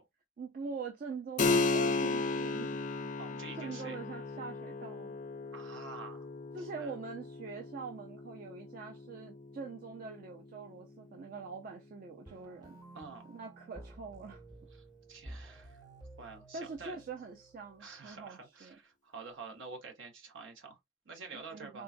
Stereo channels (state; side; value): normal; both; correlation 0.30